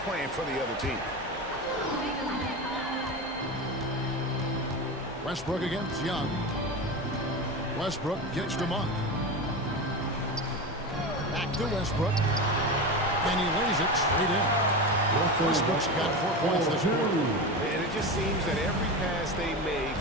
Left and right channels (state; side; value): normal; both; correlation 0.23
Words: playing for the other team. Westbrook against Young. Westbrook gets to Monk. Back to Westbrook. And he lays it straight in. Westbrook's got 4 points this quarter. And it just seems that every pass they make